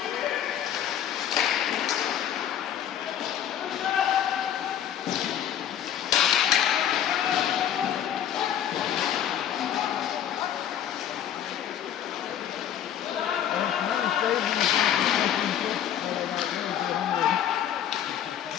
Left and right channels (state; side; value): quieter; right; 10.1 dB